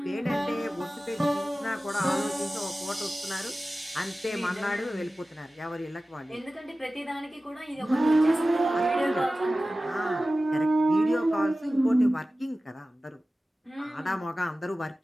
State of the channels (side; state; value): both; normal; correlation 0.96